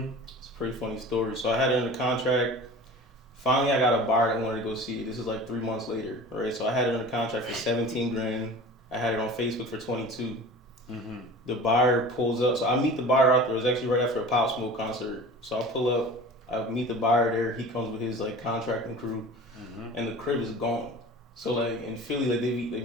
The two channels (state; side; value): normal; both; correlation 0.38